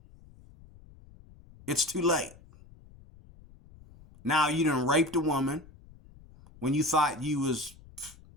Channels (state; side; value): noise; left; rumble, 23 dB below the sound